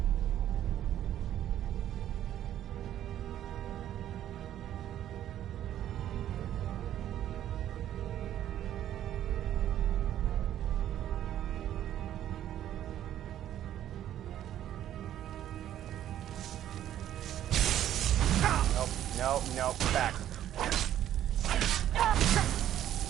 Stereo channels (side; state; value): left; quieter; 11.6 dB